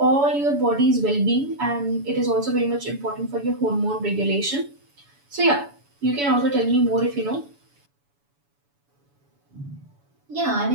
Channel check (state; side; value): late; left; 7.0 ms